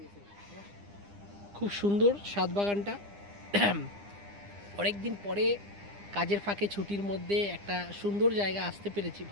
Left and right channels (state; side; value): late; left; 9.9 ms